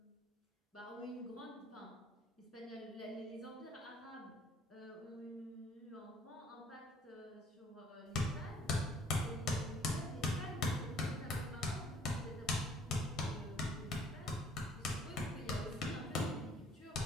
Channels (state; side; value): normal; both; correlation 0.58